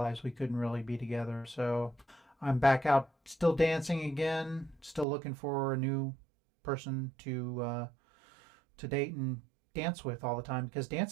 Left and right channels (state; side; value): drops out; left; at 5.1 s